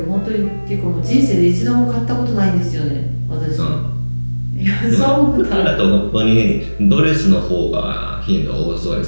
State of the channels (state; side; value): inverted; both; correlation -1.00